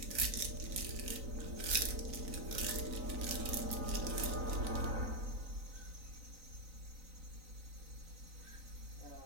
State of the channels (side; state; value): left; late; 3.9 ms